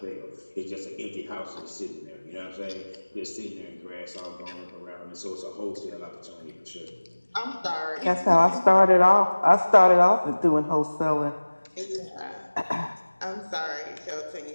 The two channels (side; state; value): both; inverted; correlation -1.00